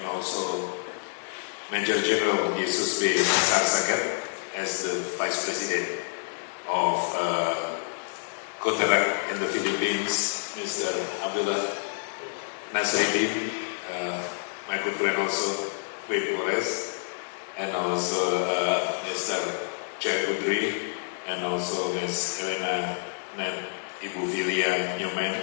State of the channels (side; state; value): right; silent; digital silence